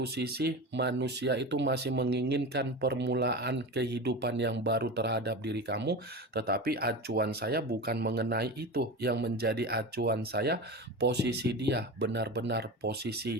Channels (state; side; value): normal; both; correlation 0.27